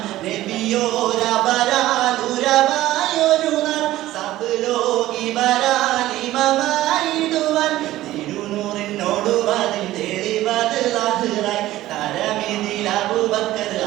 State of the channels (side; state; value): left; quieter; 15.4 dB